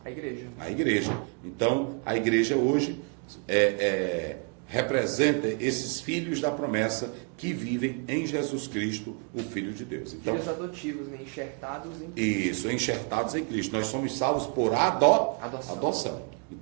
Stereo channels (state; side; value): quieter; left; 39.2 dB